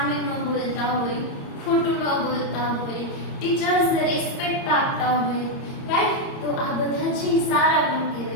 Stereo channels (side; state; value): right; late; 30 ms